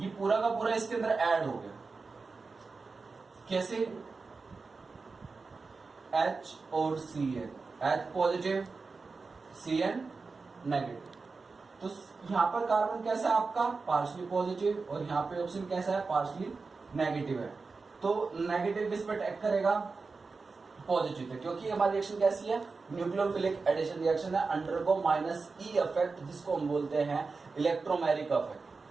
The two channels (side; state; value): left; quieter; 4.3 dB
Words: पूरा का पूरा इसके अंदर ऐड हो गया। कैसे? H और Cn, H positive Cn negative. तो यहां पर कार्बन कैसा है आपका, पार्शली पॉजिटिव, और यहां पे ऑक्सीजन कैसा है, पार्शली नेगेटिव है। तो नेगेटिव किस पर अटैक करेगा, पॉजिटिव है, क्योंकि हमारी रिएक्शन कैसी है, न्यूक्लियोफिलिक एडिशन रिएक्शन है, अंडरगो -E इफेक्ट, जिसको हम बोलते हैं इलेक्ट्रोमेरिक